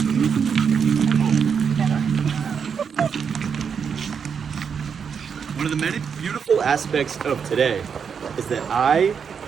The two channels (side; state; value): left; quieter; 6.7 dB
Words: of the many beautiful aspects of today is that I,